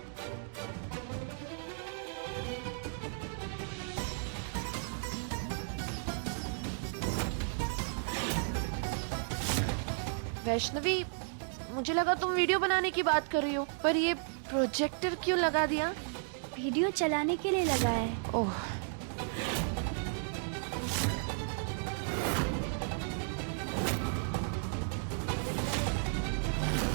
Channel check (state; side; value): silent; left; digital silence